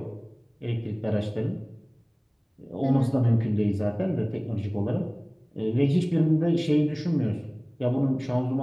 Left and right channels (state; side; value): identical; both; correlation 1.00